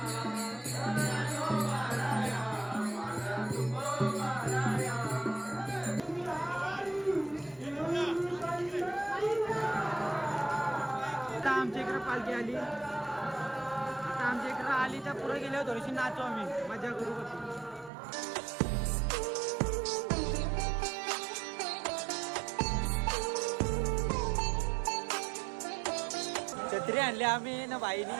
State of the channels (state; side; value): drops out; left; at 17.9 s